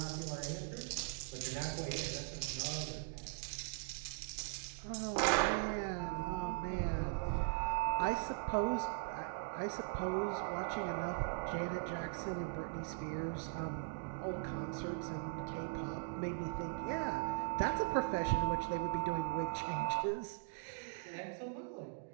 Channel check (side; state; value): left; silent; digital silence